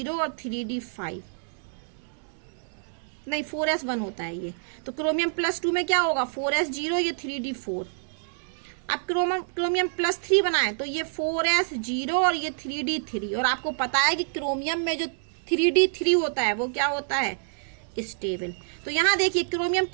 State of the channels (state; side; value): silent; left; digital silence